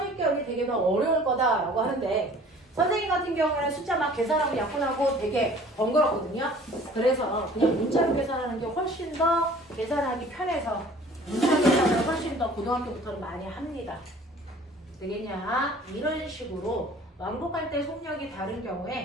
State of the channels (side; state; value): both; normal; correlation 0.50